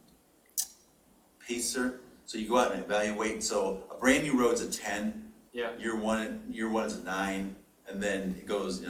PACER. So you go out and evaluate. So a brand new road's a 10. Yeah. Year one is a 9, and then it goes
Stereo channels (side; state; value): both; identical; correlation 1.00